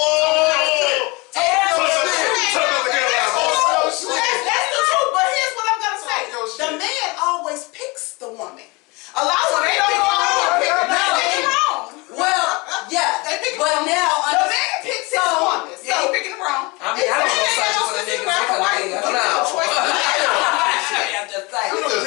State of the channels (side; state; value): right; quieter; 26.0 dB